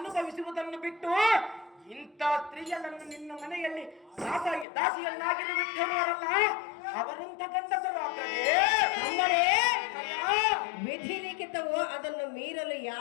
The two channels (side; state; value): right; drops out; at 4.7 s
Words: ಬಿಟ್ಟು ಇಂಥ ಸ್ತ್ರೀಯರನ್ನು ನಿನ್ನ ಮನೆಯಲ್ಲಿ ದಾಸಿಯನ್ನಾಗಿರು ಬಿಟ್ಟಿರುವರಲ್ಲ, ಅವರಂತ ಗಂಡಸರು ಅಗ್ರಜೇ. ತಮ್ಮನೇ, ವಿಧಿ ಲಿಖಿತ ಅದನ್ನು ಮೀರಲು